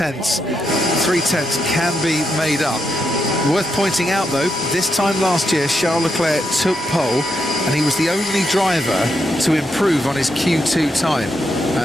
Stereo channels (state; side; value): normal; both; correlation 0.82